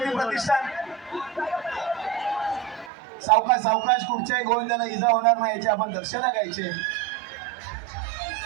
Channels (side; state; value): left; drops out; at 2.9 s